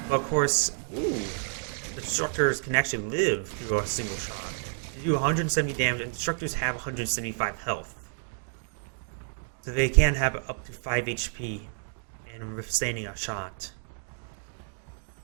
but of course, the destructors can actually live through a single shot. They do 170 damage, and destructors have 175 health, so they can have up to 5 HP and withstanding a shot.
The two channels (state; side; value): silent; left; 58 dB below the other